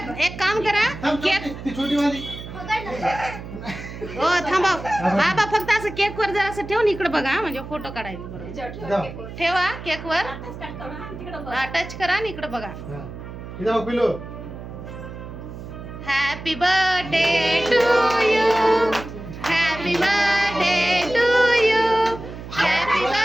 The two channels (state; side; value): noise; right; hum, 11 dB below the sound